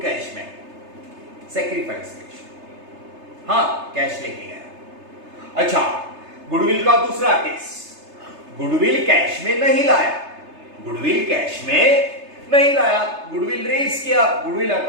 cash bank, sacrifice ratio, हाँ कैश लेके गया। अच्छा, गुडविल का दूसरा केस, गुडविल कैश में नहीं लाया, गुडविल रेज किया, goodwill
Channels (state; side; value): late; left; 3.3 ms